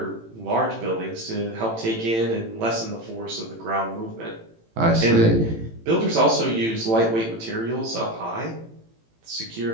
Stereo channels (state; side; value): late; left; 18 ms